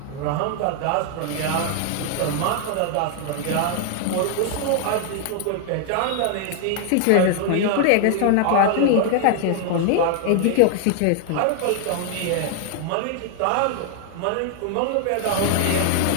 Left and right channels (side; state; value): both; different; correlation 0.00